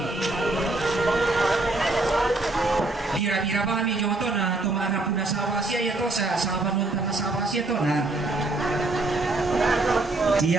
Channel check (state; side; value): quieter; left; 3.0 dB